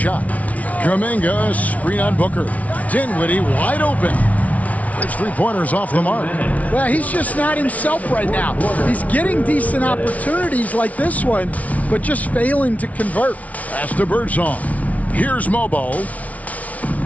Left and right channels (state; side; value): late; right; 0.069 ms